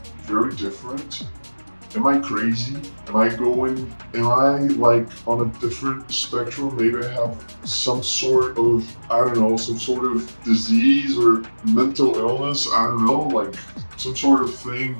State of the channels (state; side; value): inverted; both; correlation -1.00